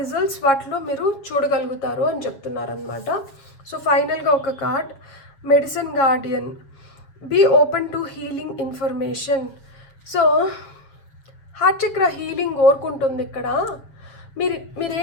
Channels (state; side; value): late; right; 7.3 ms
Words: వాటిలో మీరు చూడగలుగుతారు అని చెప్తున్నారనమాట. సో ఫైనల్గా ఒక card, medicine guardian. Be open to healing information. So heart chakra healing కోరుకుంటుంది ఇక్కడ.